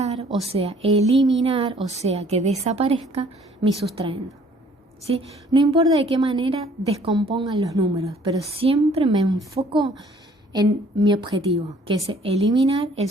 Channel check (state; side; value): normal; both; correlation 0.58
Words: o sea, eliminar, o sea, que desaparezca mi sustraendo, ¿sí? No importa de qué manera descompongan los números, pero siempre me enfoco en mi objetivo, que es eliminar el